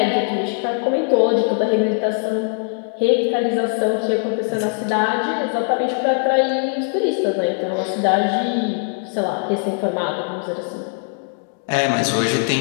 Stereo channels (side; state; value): right; silent; 58 dB below the other